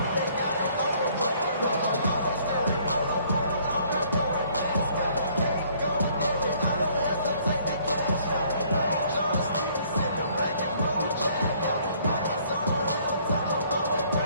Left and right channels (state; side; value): inverted; both; correlation -0.61